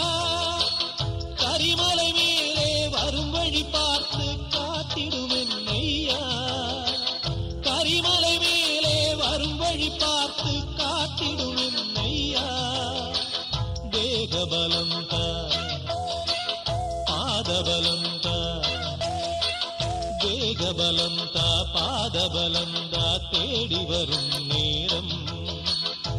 கரிமலை மேலே வரும் வழி பார்த்து காத்திடுவேன் ஐயா, கரிமலை மேலே வரும் வழி பார்த்து காத்திடுவேன் ஐயா. தேகபலம் தா, பாதபலம் தா, தேகபலம் தா, பாதபலம் தா, தேடி வரும் நேரம்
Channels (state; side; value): identical; both; correlation 1.00